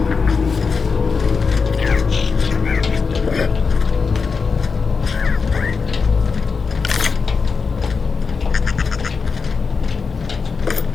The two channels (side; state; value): right; quieter; 5.1 dB